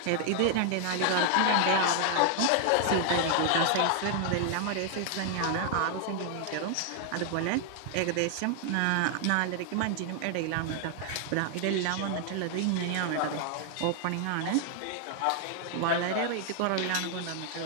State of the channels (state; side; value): different; both; correlation 0.00